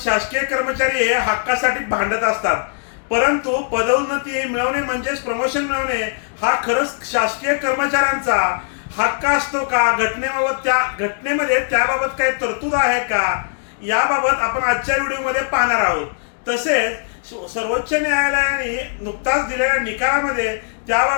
कर्मचारी हे हक्कासाठी भांडत असतात. परंतु पदोन्नती मिळवणे म्हणजेच प्रमोशन मिळवणे हा खरंच शासकीय कर्मचाऱ्यांचा हक्क असतो का? घटनेमध्ये त्याबाबत काही तरतूद आहे का? याबाबत आपण आजच्या व्हिडिओमध्ये पाहणार आहोत. तसेच सर्वोच्च न्यायालयाने नुकताच दिलेल्या निकालामध्ये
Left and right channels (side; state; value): right; silent; digital silence